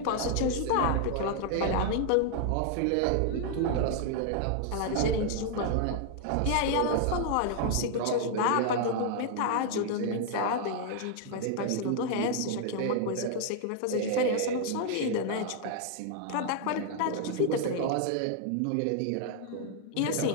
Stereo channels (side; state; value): both; different; correlation 0.00